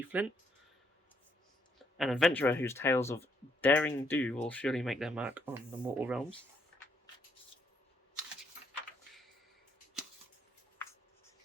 Flint, an adventurer whose tales of daring do will surely make their mark on the mortal realms.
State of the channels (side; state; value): both; normal; correlation 0.72